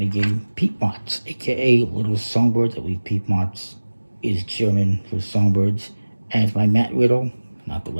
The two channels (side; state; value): both; inverted; correlation -1.00